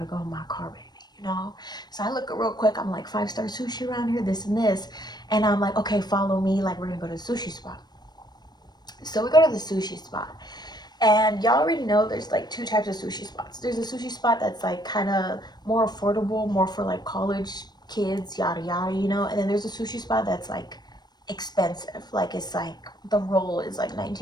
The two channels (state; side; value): late; right; 0.20 ms